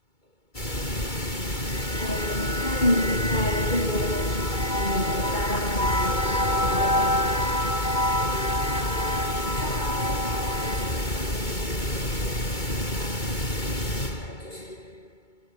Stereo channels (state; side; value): late; right; 2.2 ms